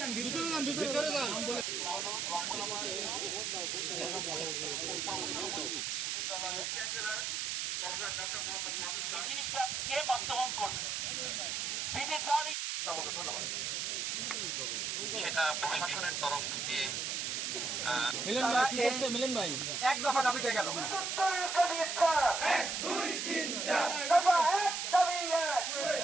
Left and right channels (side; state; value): right; noise; hiss, 1 dB below the sound